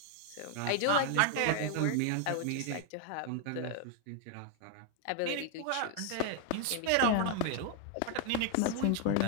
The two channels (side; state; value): both; different; correlation 0.00